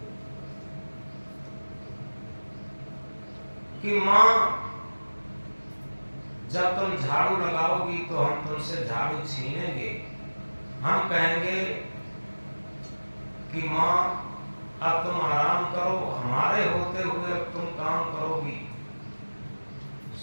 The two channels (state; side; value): inverted; both; correlation -1.00